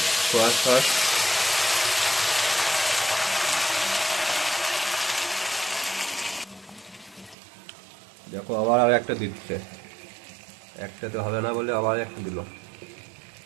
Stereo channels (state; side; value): drops out; left; at 7.4 s